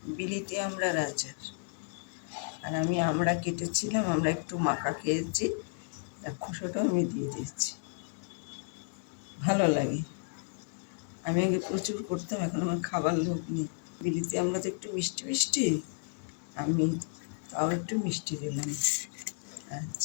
বিলিতি আমড়ার আচার। আর আমি আমড়া কেটেছিলাম, আমরা একটু মাখা খেয়েছি, তার খোসাটাও আমি দিয়ে দিয়েছি। ভালো লাগে। আমি আগে প্রচুর করতাম, এখন আমার খাবার লোক নেই। বিলিতি আমড়া তো একটু মিষ্টি মিষ্টি, আমি তাও একটু মিষ্টি দিলাম।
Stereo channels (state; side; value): silent; right; digital silence